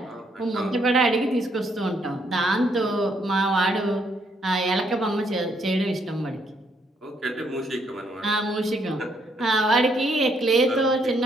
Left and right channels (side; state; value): both; normal; correlation 0.72